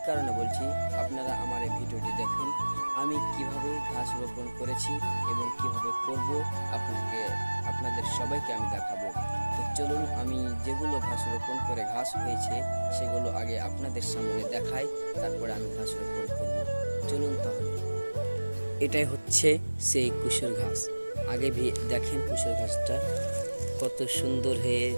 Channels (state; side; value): inverted; both; correlation -1.00